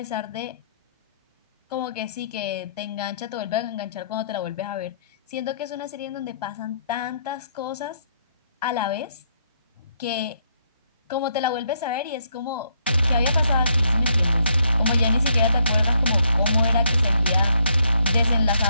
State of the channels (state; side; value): inverted; both; correlation -0.73